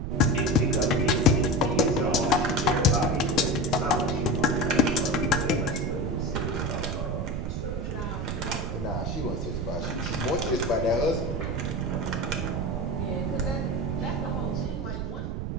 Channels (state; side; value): noise; right; rumble, 3 dB below the sound